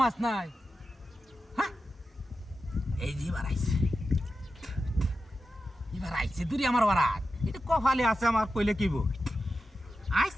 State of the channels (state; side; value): normal; both; correlation 0.91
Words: মাছ নাই হ্যাঁ এই যে এবার আইছে দূরে আমার বারাত এটা কপালে আছে আমার কইলে কি বল আইস